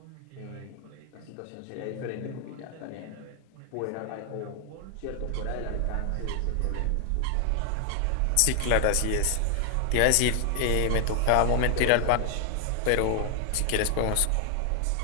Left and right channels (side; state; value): both; different; correlation 0.00